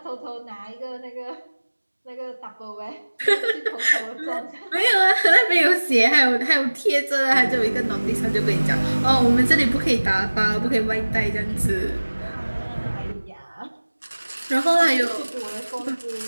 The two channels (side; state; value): both; inverted; correlation -1.00